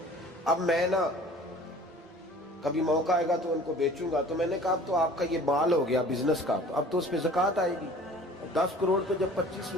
اب میں نا کبھی موقع آئے گا تو ان کو بیچوں گا. تو میں نے کہا اب تو آپ کا یہ مال ہو گیا بزنس کا، تو اب تو اس پہ زکوٰۃ آئے گی. 10 کروڑ پہ جب 25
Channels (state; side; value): normal; both; correlation 0.47